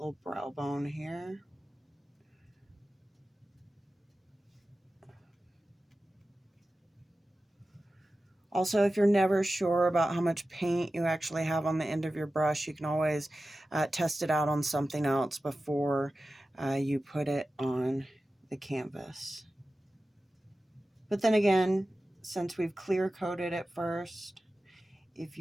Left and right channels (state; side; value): normal; both; correlation 0.94